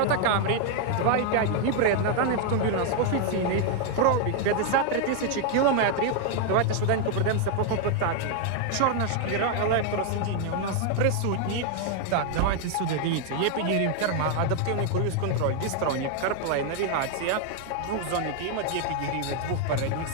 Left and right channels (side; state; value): both; different; correlation 0.00